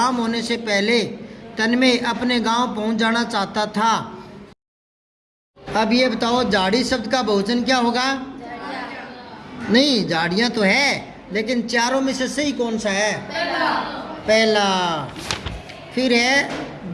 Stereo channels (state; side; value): identical; both; correlation 1.00